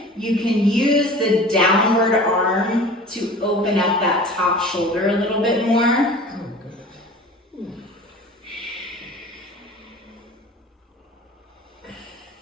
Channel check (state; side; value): normal; both; correlation 0.41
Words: you can use the downward arm to open up that top shoulder a little bit more.